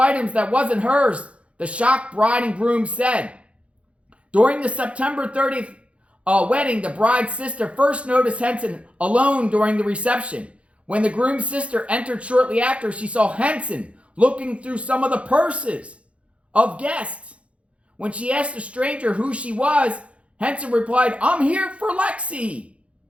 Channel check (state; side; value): late; left; 0.062 ms